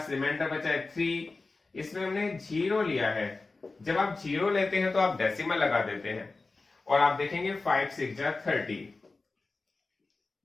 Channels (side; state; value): right; quieter; 3.7 dB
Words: रिमाइंडर बचा है 3, इसमें हमने 0 लिया है। जब आप 0 लेते हैं तो आप डेसिमल लगा देते हैं और आप देखेंगे 5 6 जा 30।